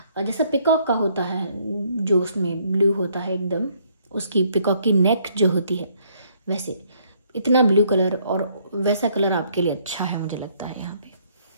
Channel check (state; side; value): inverted; both; correlation -0.67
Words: जैसा पिकॉक का होता है, जो उसमें ब्लू होता है एकदम, उसकी पिकॉक की नेक जो होती है वैसे इतना ब्लू कलर, और वैसा कलर आपके लिए अच्छा है मुझे लगता है यहाँ पे।